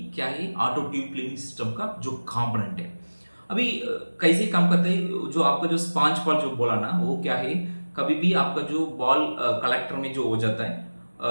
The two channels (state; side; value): inverted; both; correlation -1.00